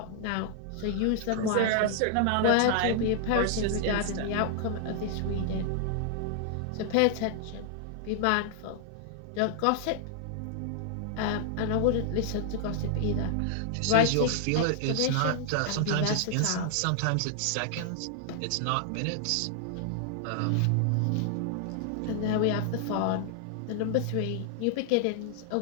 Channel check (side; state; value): both; different; correlation 0.00